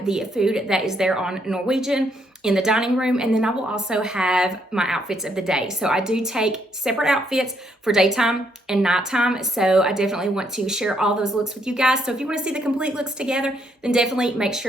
the food that is there on Norwegian in the dining room, and then I will also have my outfits of the day. So I do take separate outfits for daytime and nighttime, so I definitely want to share all those looks with you guys. So if you want to see the complete looks together, then definitely make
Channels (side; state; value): both; normal; correlation 0.73